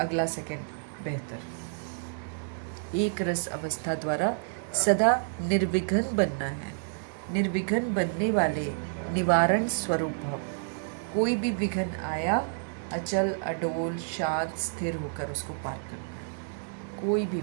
सेकंड बेहतर। एक रस अवस्था द्वारा सदा निर्विघ्न बनना है। निर्विघ्न बनने वाले निवारण स्वरूप भव। कोई भी विघ्न आया, अचल अडोल शांत स्थिर होकर उसको पार करना है। कोई भी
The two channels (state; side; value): silent; left; digital silence